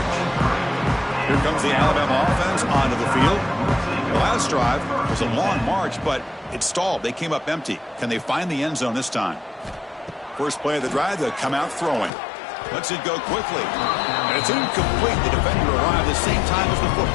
Here comes the Alabama offense onto the field. The last drive was a long march, but it stalled. They came up empty. Can they find the end zone this time? First play of the drive, they'll come out throwing. Lets it go quickly. And it's incomplete. The defender arrived at the same time as the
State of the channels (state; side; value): drops out; right; at 12.1 s